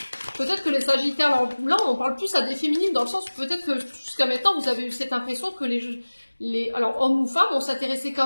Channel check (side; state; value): both; inverted; correlation -1.00